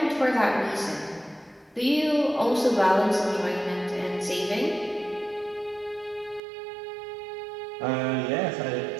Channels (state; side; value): drops out; left; at 6.4 s